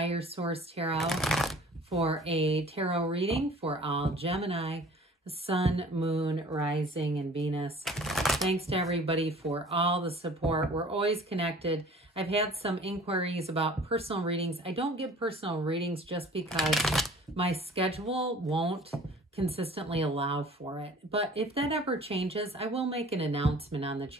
Source Tarot for a tarot reading for all Gemini, Sun, Moon, Rising, and Venus. Thanks to everybody for all the support. We're always connected. I've had some inquiries about personal readings. I don't give personal readings just because my schedule won't consistently allow for it. But if that ever changes, I will make an announcement on the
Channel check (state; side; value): normal; both; correlation 0.48